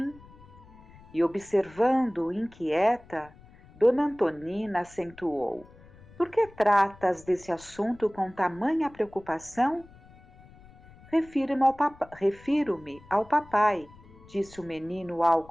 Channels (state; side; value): noise; left; rumble, 23 dB below the sound